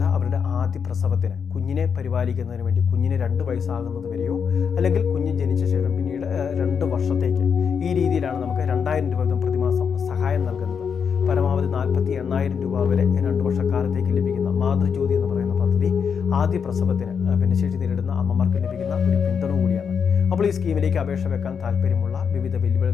അവരുടെ ആദ്യ പ്രസവത്തിന് കുഞ്ഞിനെ പരിപാലിക്കുന്നതിന് വേണ്ടി കുഞ്ഞിന് 2 വയസ്സാകുന്നത് വരെയോ അല്ലെങ്കിൽ കുഞ്ഞ് ജനിച്ച ശേഷം പിന്നീട് 2 വർഷത്തേക്ക് ഈ രീതിയിലാണ് നമുക്ക് 2000 രൂപ വീതം പ്രതിമാസം സഹായം നൽകുന്നത്. പരമാവധി 48,000 രൂപ വരെ 2 വർഷക്കാലത്തേക്ക് ലഭിക്കുന്ന മാതൃജ്യോതി എന്ന് പറയുന്ന പദ്ധതി ആദ്യ പ്രസവത്തിന് ഭിന്നശേഷി നേരിടുന്ന അമ്മമാർക്ക് ലഭിക്കുന്ന ഒരു പിന്തുണ കൂടിയാണ്. അപ്പോൾ ഈ സ്കീമിലേക്ക് അപേക്ഷ വെക്കാൻ താല്പര്യമുള്ള വിവിധ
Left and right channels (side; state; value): right; quieter; 6.7 dB